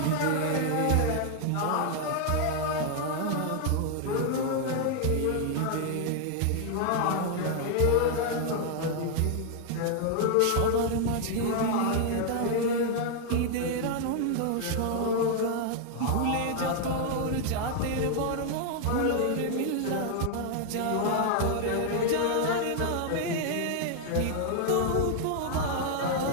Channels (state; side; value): different; both; correlation 0.00